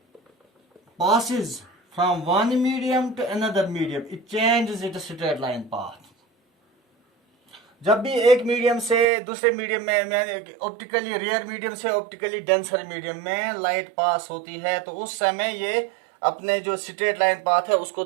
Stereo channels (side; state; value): left; drops out; at 9.1 s